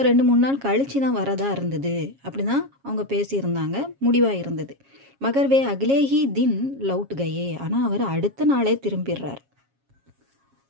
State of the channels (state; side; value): late; left; 7.3 ms